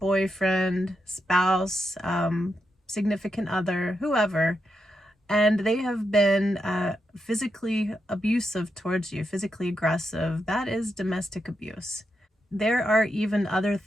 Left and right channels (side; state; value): both; normal; correlation 0.84